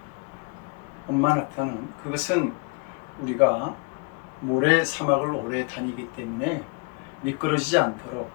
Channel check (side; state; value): right; quieter; 32.1 dB